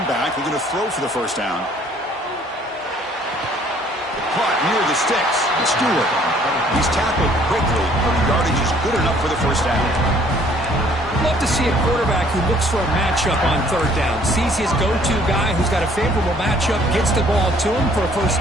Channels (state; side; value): normal; both; correlation 0.59